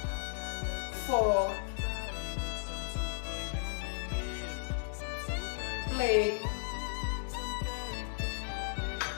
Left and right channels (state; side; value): silent; right; digital silence